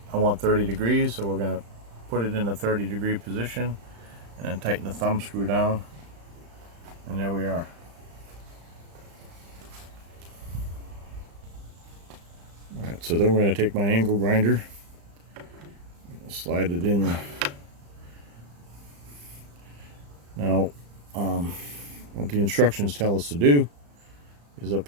I want 30 degrees, so we're going to put it in a 30-degree position. And then tighten the thumb screw down, and there we are. Alright, so then we're going to take my angle grinder, slide it in Now, what the instructions tell us to do is up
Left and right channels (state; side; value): late; left; 35 ms